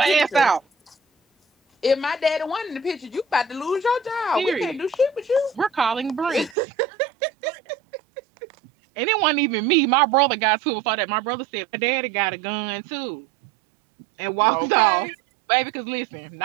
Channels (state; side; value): drops out; left; at 6.6 s